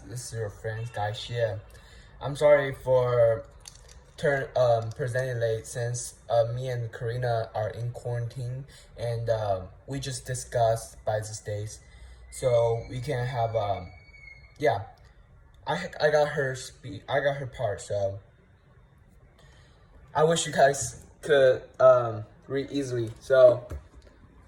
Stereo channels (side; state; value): both; identical; correlation 1.00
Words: this is your friend Guy Xie. I'm sorry for presenting late since me and Karina are in quarantine and we just discussed by these days, so we can have yeah. I got I got her part, so I wish you guys could read easily. So